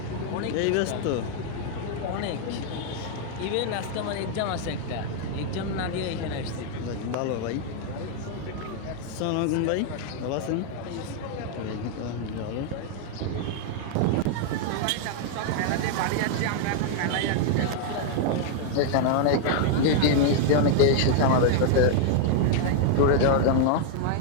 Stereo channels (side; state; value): both; different; correlation 0.00